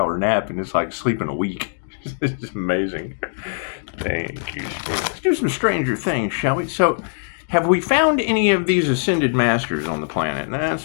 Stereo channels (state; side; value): silent; right; digital silence